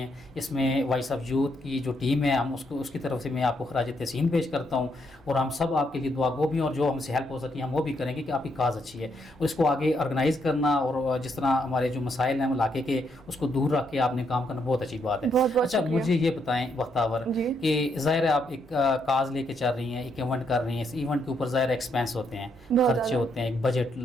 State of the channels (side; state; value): both; normal; correlation 0.76